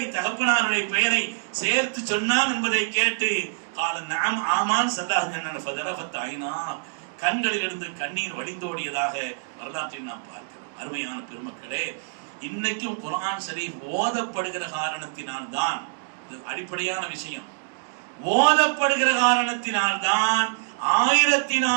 தகப்பனாருடைய பெயரை சேர்த்து சொன்னான் என்பதை கேட்டு கால நஅம் ஆமான் ஸல்லல்லாஹு அலைஹி வஸல்லம் ஃபதரஃபத் ஐனா, கண்களிலிருந்து கண்ணீர் வடிந்தோடியதாக வரலாற்றில் நாம் பார்க்கிறோம். அருமையான பெருமக்களே, இன்னைக்கும் குர்ஆன் ஷரீஃப் ஓதப்படுகிற காரணத்தினால் தான், அடிப்படையான விஷயம், ஓதப்படுகிற காரணத்தினால் தான்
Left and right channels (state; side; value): silent; left; digital silence